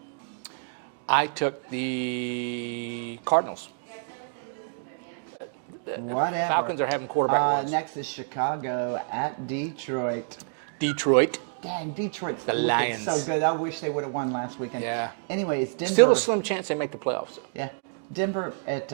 I took the Cardinals. Whatever. Falcons are having quarterback wins. Next is Chicago at Detroit. Dang, Detroit's looking Lions. so good. I wish they would have won last weekend. Yeah. Anyways, Denver. Still a slim chance they make the playoffs. Yeah. Denver at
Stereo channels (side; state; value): left; silent; digital silence